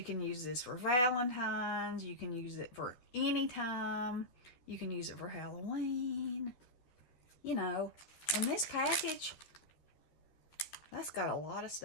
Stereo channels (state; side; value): late; right; 12 ms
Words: can use this for Valentine's. You can use it for any time. You can use it for Halloween. You know, and this package, that's got a lot of